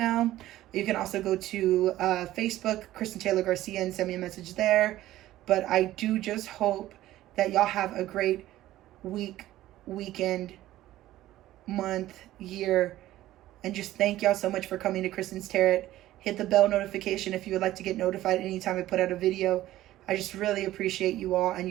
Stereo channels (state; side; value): quieter; left; 14.8 dB